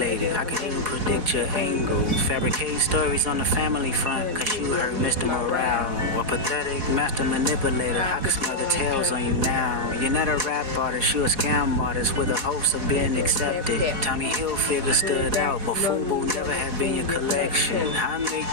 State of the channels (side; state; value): left; late; 4.1 ms